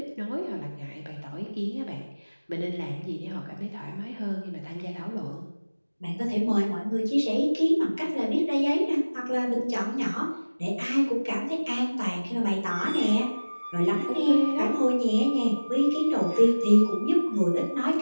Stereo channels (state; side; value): inverted; both; correlation -1.00